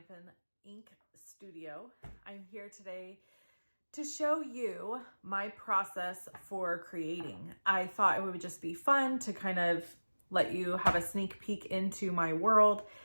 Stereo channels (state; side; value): inverted; both; correlation -1.00